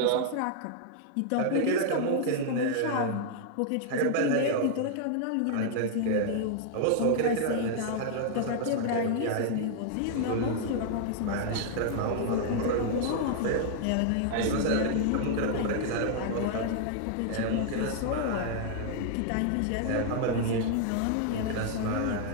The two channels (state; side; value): different; both; correlation -0.01